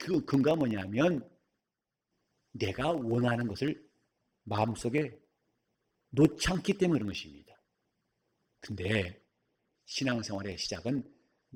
근거가 뭐냐면 내가 원하는 것을 마음속에 놓지 않기 때문에 그런 것입니다. 근데 신앙생활의 시작은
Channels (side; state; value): both; identical; correlation 1.00